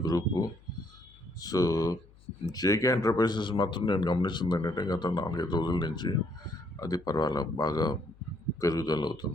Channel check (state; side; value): noise; left; hum, 26 dB below the sound